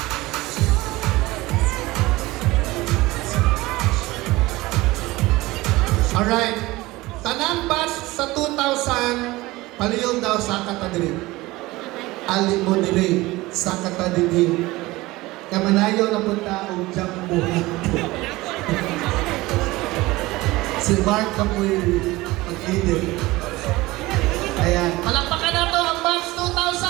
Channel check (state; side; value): quieter; left; 19.9 dB